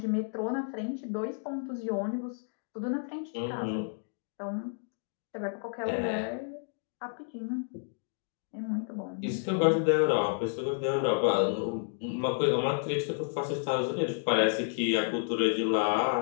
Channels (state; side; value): silent; right; digital silence